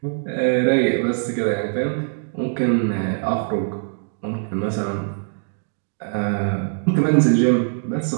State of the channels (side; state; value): left; silent; digital silence